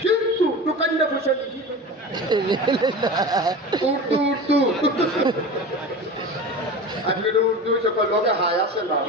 কিন্তু দোকানটা পয়সা দিচ্ছি। উর্দু উর্দু আজকে উর্দু সকল লোকে হাই আসে না,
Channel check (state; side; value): normal; both; correlation 0.31